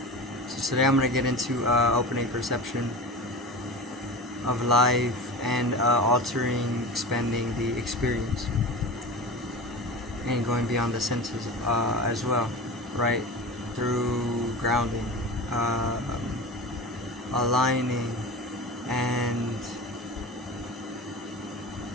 So today I'm going to get into opening perception of life and altering, expanding the experience, and going beyond the senses as well, right? Through grounding, aligning, and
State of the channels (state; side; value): normal; both; correlation 0.30